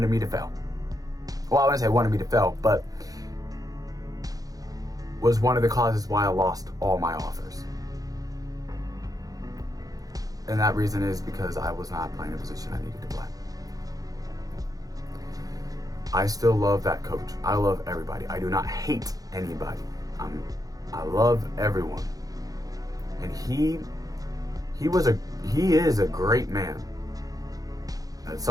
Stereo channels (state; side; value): late; left; 0.17 ms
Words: me to fail. Well, I wouldn't say wanted me to fail, but was one of the causes why I lost all my offers. And that reason is because I was not playing the position I needed to play. I still love that coach. I love everybody. I do not hate anybody. I love everyone. And he is a great man.